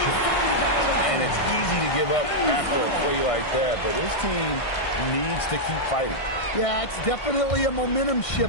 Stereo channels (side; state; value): right; late; 1.6 ms